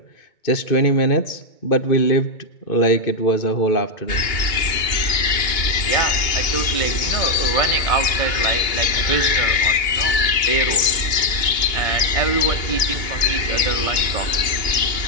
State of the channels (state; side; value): late; right; 2.2 ms